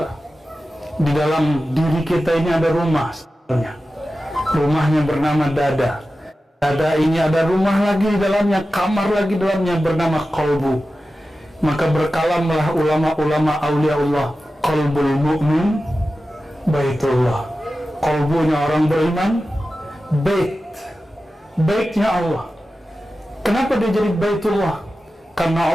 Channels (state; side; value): normal; both; correlation 0.94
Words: Di dalam diri kita ini ada rumah, rumahnya bernama dada. Dada ini ada rumah lagi di dalamnya, kamar lagi di dalamnya bernama qalbu. Maka berkalamlah ulama-ulama aulia Allah, qalbul mu'min baitullah. Qalbunya orang beriman, baitnya Allah. Kenapa dia jadi baitullah? Karena